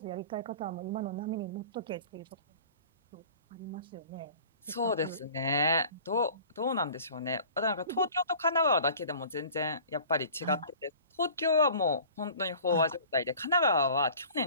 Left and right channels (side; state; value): both; inverted; correlation -0.45